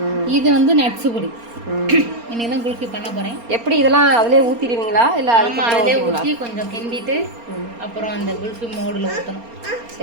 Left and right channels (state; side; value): late; left; 4.3 ms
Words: இது வந்து நட்ஸு பொடி. இன்னைக்கு தான் குல்ஃபி பண்ண போகிறேன். எப்படி இதெல்லாம் அதிலே ஊற்றிடுவீங்களா இல்லை? ஆமாம், அதிலே ஊற்றி கொஞ்சம் கிண்டிட்டு அப்புறம் அந்த குல்ஃபி மோடில் ஊற்றணும்.